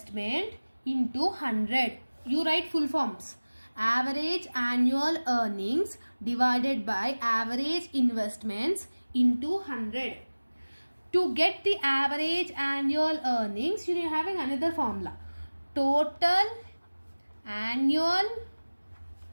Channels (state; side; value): inverted; both; correlation -1.00